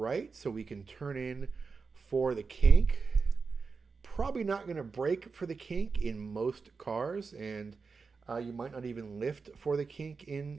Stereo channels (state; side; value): quieter; left; 4.8 dB